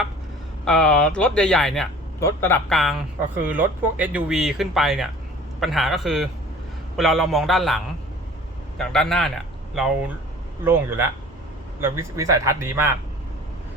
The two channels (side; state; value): both; normal; correlation 0.46